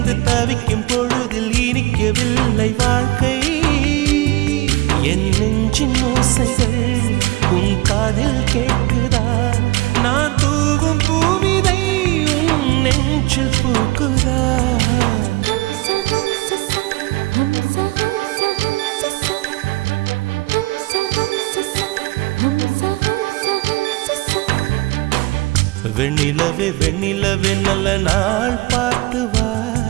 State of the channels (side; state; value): left; quieter; 20.4 dB